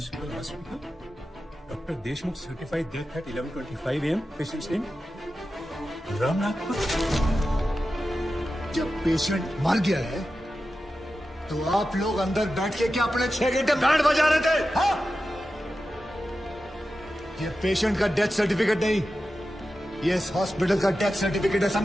Doctor Deshmukh certified death eight 11:25 AM। Patients name Ramnath. जब पेशेंट मर गया है तो आप लोग अंदर बैठ के क्या अपने 6 घंटे बैंड बजा रहे थे? हाँ? ये पेशेंट का डेथ सर्टिफिकेट नहीं, ये इस हॉस्पिटल का डेथ सर्टिफिकेट है,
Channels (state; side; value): normal; both; correlation 0.92